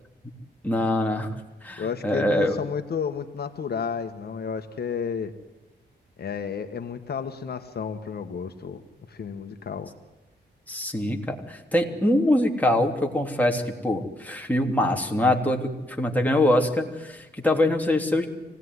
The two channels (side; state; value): both; normal; correlation 0.72